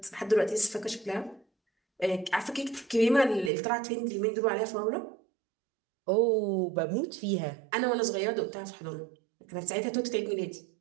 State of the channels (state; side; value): drops out; left; at 3.5 s